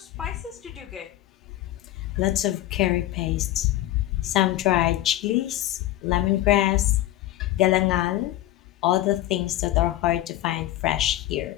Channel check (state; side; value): quieter; right; 14.9 dB